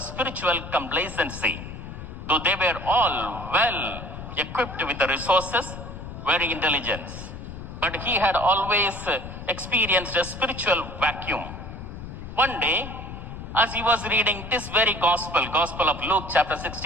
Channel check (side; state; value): left; noise; rumble, 10 dB below the sound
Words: complacency. Though they were all well equipped with the resources, very intelligent. But he had always experienced a spiritual vacuum. One day, as he was reading this very gospel of Luke chapter